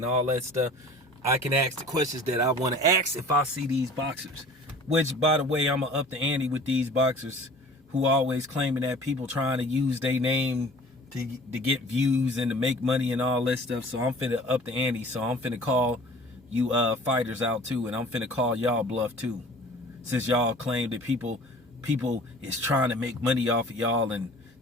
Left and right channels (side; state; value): both; normal; correlation 0.46